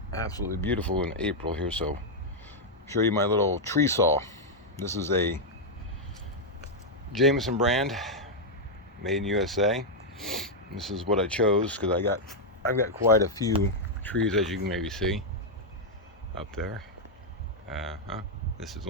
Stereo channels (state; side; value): normal; both; correlation -0.03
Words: absolutely beautiful in April here, so I'll show you my little tree saw. This is a Jameson brand, made in USA. This is what I chose because I've got quite a few trees, as you can maybe see up there. This is